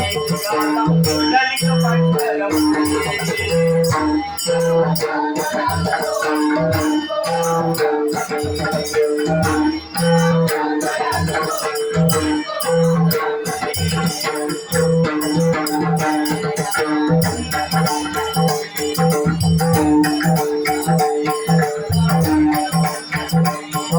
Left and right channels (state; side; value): identical; both; correlation 1.00